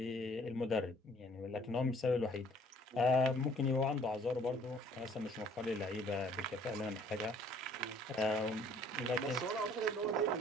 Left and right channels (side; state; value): both; normal; correlation 0.58